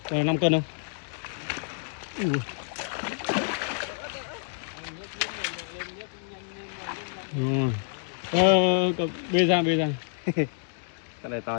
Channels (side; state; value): right; silent; digital silence